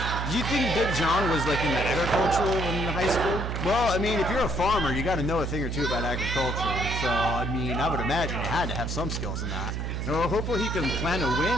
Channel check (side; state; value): right; noise; hum, 3 dB below the sound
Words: Do you think Big John was like in the agricultural in high school? Well, I mean, if you're a farmer, you got to know a thing or two about agriculture. So, I mean, I would imagine you had to have some skills in that. Well, hopefully he can plan a